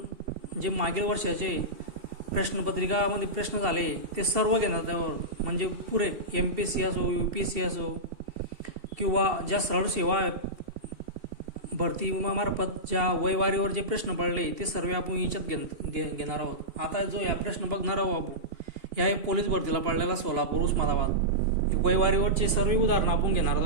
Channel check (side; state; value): left; late; 2.7 ms